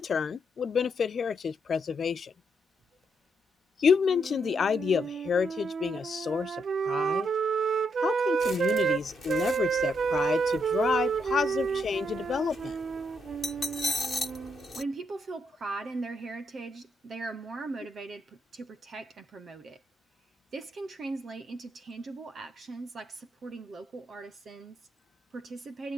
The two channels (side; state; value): both; normal; correlation 0.77